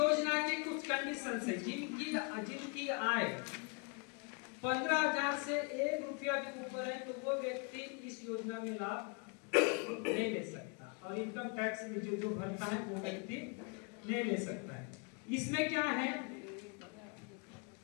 के कुछ कंडीशंस है। जिनकी आय 15,000 से 1 रुपया भी ऊपर है तो वो व्यक्ति इस योजना में लाभ नहीं ले सकता, और इनकम टैक्स में जो भरता है वो व्यक्ति नहीं ले सकता है। इसमें क्या है,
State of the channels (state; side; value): quieter; right; 34.3 dB